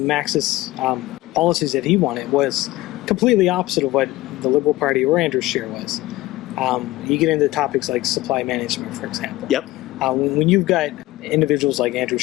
policies that he wanted was completely opposite of what the Liberal Party or Andrew Scheer was. You get into topics like supply management, for example. Yep. When you've got individuals like Andrew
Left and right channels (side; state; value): right; quieter; 17.8 dB